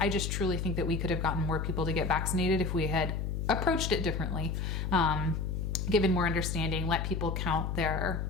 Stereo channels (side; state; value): left; noise; hum, 2 dB below the sound